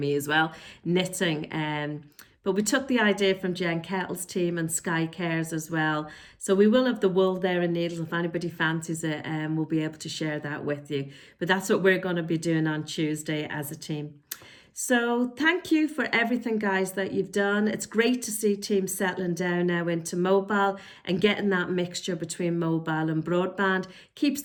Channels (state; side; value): identical; both; correlation 1.00